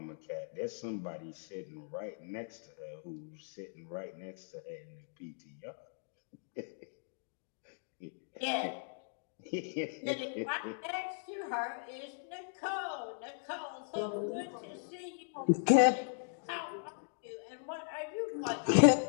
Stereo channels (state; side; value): silent; right; digital silence